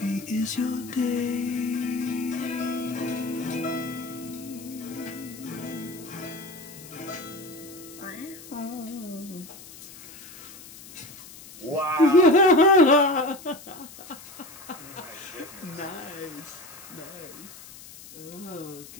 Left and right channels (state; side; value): noise; left; hiss, 17 dB below the sound